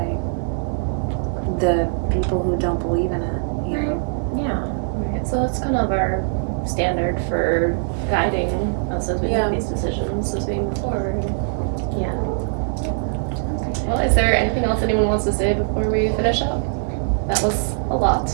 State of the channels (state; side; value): silent; left; digital silence